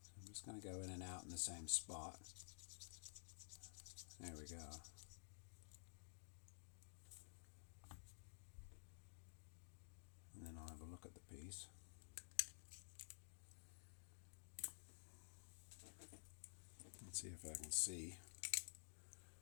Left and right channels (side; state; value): right; silent; digital silence